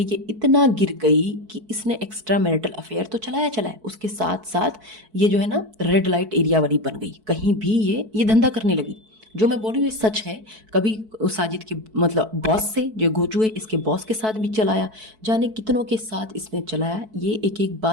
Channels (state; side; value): late; left; 4.6 ms